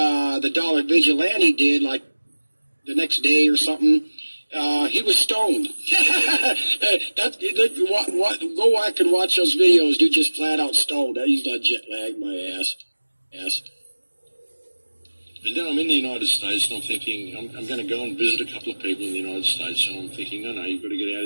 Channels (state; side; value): inverted; both; correlation -1.00